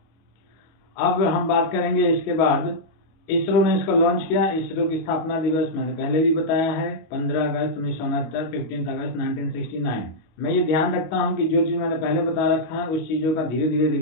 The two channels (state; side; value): late; right; 25 ms